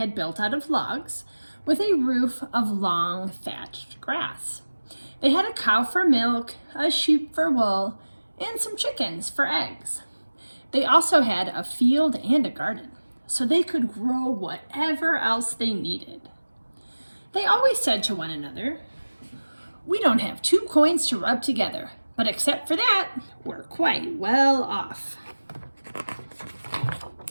built out of logs with a roof of long thatched grass. They had a cow for milk, a sheep for wool, and some chickens for eggs. They also had a field and a garden, so they could grow whatever else they needed. They always said to one another, "We don't have two coins to rub together, but except for that, we're quite well off."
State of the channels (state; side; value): inverted; both; correlation -1.00